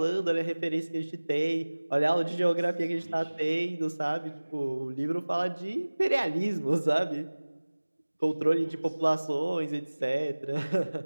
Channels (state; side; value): inverted; both; correlation -1.00